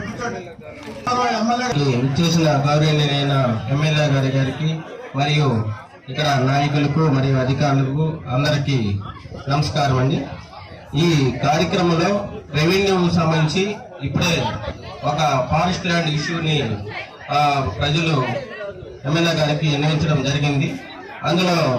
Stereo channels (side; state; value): both; identical; correlation 1.00